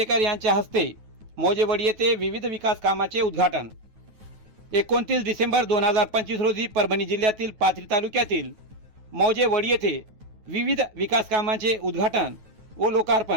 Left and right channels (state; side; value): late; left; 9.3 ms